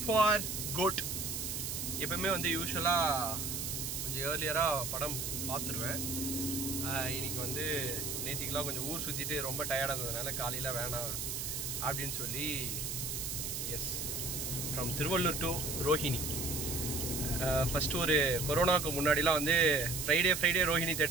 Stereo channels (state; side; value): noise; right; hiss, 3 dB below the sound